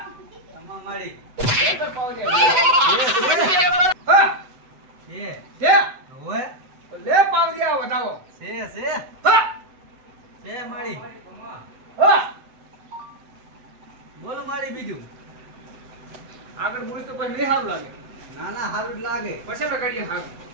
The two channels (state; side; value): late; left; 7.9 ms